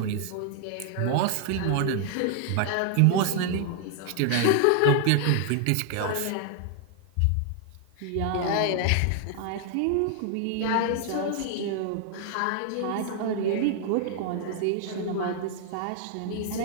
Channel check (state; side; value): different; both; correlation 0.00